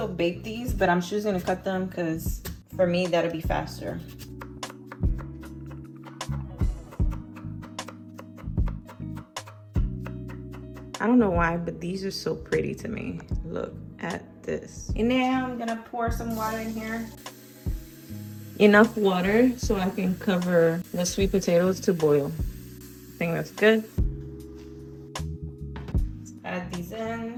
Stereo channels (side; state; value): both; identical; correlation 1.00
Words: bake these, but I'm choosing to cut them because for me, that'll be faster. I don't know why, but these are so pretty to me. Look at this. And now I'm gonna pour some water in here. Enough water so I can cover the sweet potatoes to boil. I think that's good. Let's add these